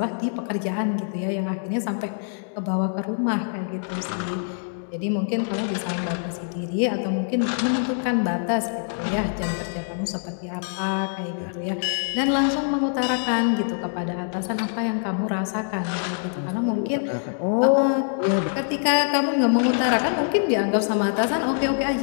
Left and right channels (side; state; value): right; silent; digital silence